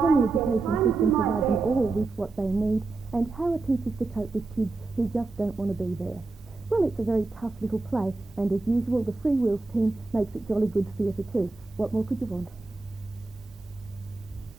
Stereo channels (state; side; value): quieter; left; 3.5 dB